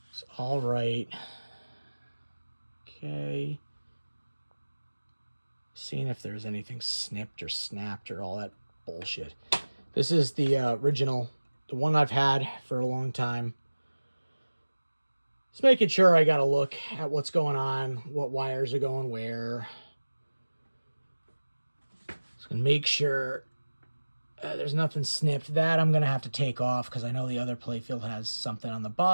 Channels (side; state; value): both; inverted; correlation -1.00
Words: It's all right. Okay. Seeing if there's anything snipped or snapped or all that bullshit. This is the original, the one I've had for a long time. Just making sure I got to look at what's going on, what wires are going where. Just gonna make sure there's nothing snipped. That I'm gonna have to take off because I know the other playfield has something on the